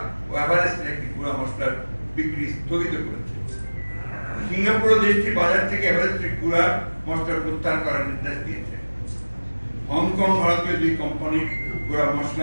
ও এভারেস্টের একটি গুঁড়া মশলার বিক্রি স্থগিত করেছে। সিঙ্গাপুর দেশটি বাজার থেকে এভারেস্টের গুঁড়া মশলা প্রত্যাহার করার নির্দেশ দিয়েছে। হংকং ভারতীয় 2 কোম্পানির গুঁড়া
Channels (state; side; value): inverted; both; correlation -1.00